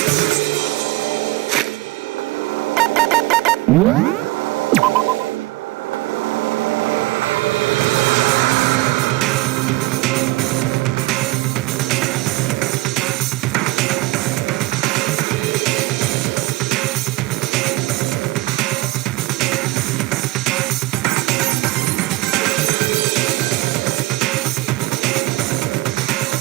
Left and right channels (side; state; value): left; quieter; 19.9 dB